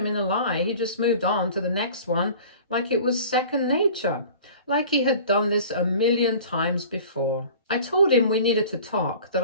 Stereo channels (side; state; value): both; inverted; correlation -0.43